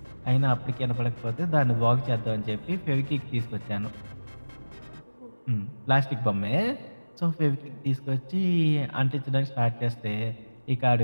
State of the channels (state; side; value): inverted; both; correlation -1.00